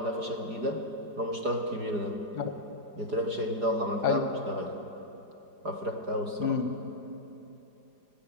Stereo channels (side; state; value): left; late; 4.9 ms